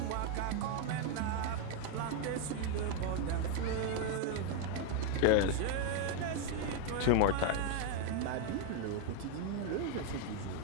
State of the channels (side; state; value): both; different; correlation 0.01